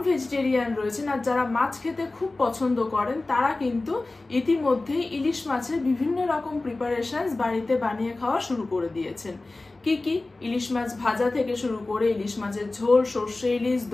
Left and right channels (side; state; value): right; quieter; 3.1 dB